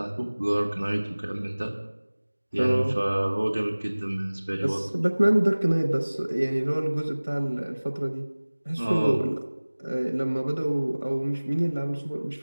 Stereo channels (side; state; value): both; inverted; correlation -1.00